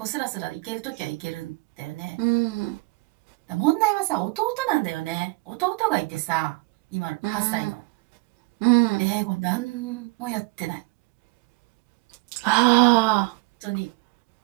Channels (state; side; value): quieter; left; 24.9 dB